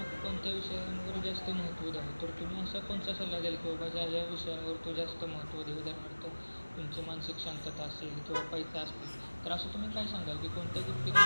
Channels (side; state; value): both; inverted; correlation -1.00